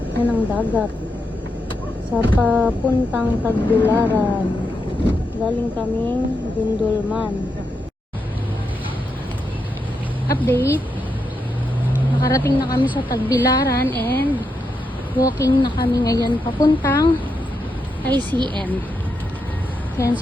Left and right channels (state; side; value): normal; both; correlation 0.84